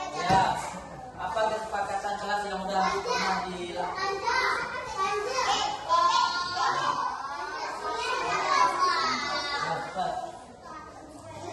Ya, apa kesepakatan kelas yang udah pernah dilakukan?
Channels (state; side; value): identical; both; correlation 1.00